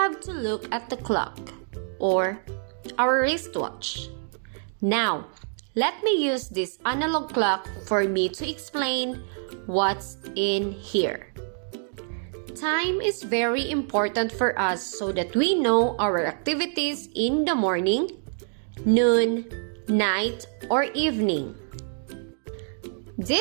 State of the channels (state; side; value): silent; left; 61 dB below the other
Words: to look at the clock or our wristwatch. Now, let me use this analog clock for me to explain what's in here. Time is very important for us so that we know our activities in the morning, noon, night, or evening.